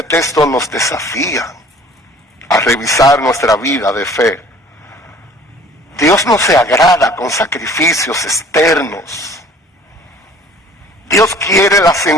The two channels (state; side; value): normal; both; correlation 0.51